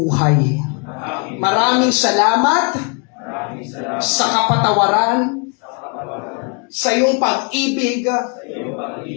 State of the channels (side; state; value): right; quieter; 35.1 dB